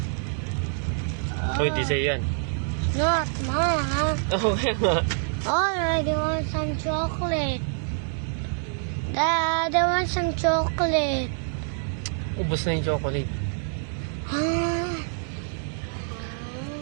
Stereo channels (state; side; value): silent; left; digital silence